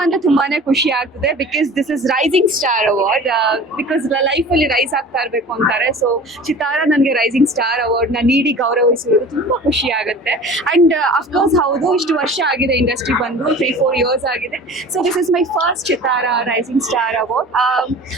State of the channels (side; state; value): both; normal; correlation 0.41